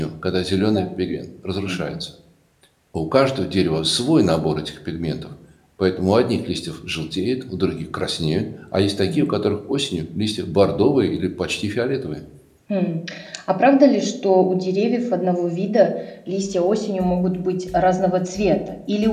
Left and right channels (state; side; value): identical; both; correlation 1.00